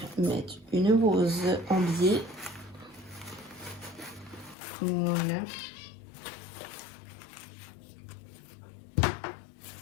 mettre une rose en biais. Voilà.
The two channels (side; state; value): right; drops out; at 4.5 s